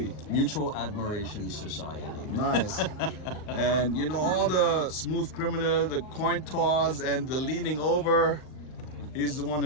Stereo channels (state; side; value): late; right; 39 ms